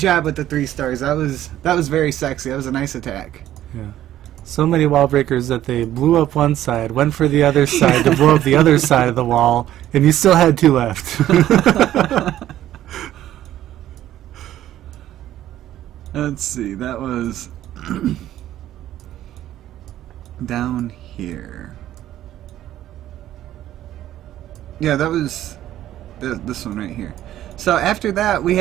with the 3 stars. That was very sexy. That was a nice attack. Yeah. So many wall breakers that they blew up one side, went for the other side to blow up the other side of the wall, and you still had 2 left. Let's see. That was down here. Yeah, that was this one right here. So after that, we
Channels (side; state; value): left; quieter; 12.8 dB